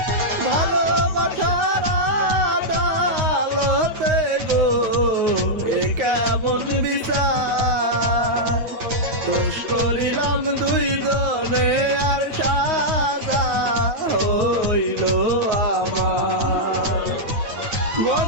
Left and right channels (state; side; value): late; left; 9.2 ms